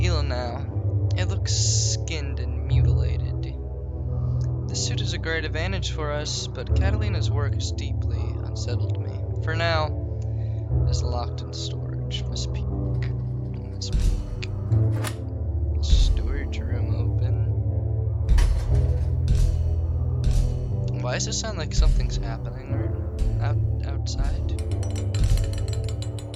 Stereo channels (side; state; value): both; identical; correlation 1.00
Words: eel now, it looks skinned and mutilated. This suit is a great advantage for us, but Catalina's work has deeply unsettled me. For now, it is locked in storage. Miss Peak. Miss Peak. Storage room open. Why does it sound like something's happening outside?